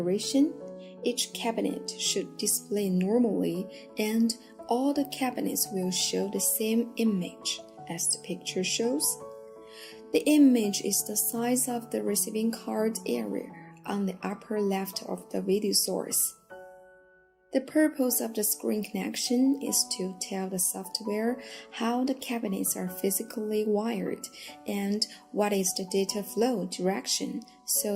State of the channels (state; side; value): identical; both; correlation 1.00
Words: each cabinet should display normally and all the cabinets will show the same image as the picture shows. The image is the size of the receiving card area on the upper left of the video source. The purpose of the screen connection is to tell the software how the cabinets are physically wired and what is the data flow direction